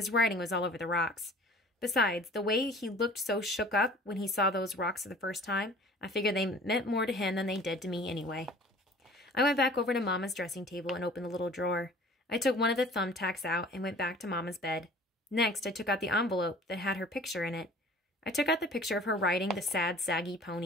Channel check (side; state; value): both; normal; correlation 0.48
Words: writing was all over the rocks. Besides, the way he looked so shook up when he saw those rocks for the first time, I figured they meant more to him than they did to me anyway. I went back over to Mama's dressing table and opened the little drawer. I took one of the thumbtacks out and went back to Mama's bed. Next, I took out the envelope that had her picture in it. I took out the picture of her riding the sad, saggy